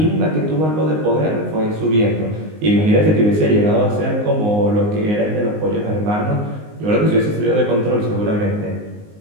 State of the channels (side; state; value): left; late; 19 ms